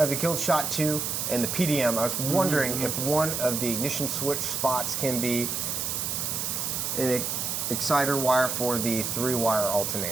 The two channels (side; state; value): right; noise; hiss, 1 dB below the sound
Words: the Killshot 2 and the PDM. I was wondering if one of the ignition switch spots can be an exciter wire for the 3-wire